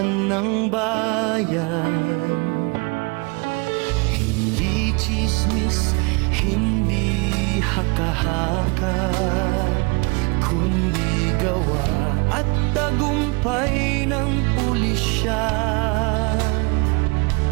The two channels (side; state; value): left; quieter; 29.5 dB